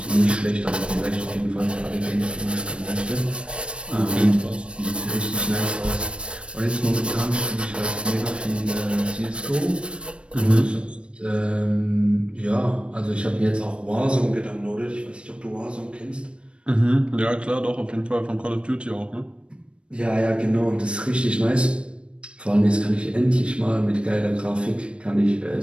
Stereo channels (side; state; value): left; late; 0.059 ms